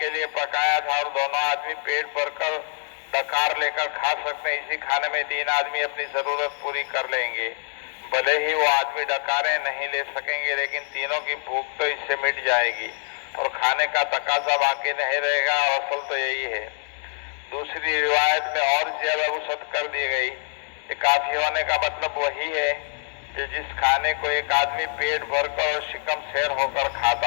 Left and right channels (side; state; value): right; silent; 57 dB below the other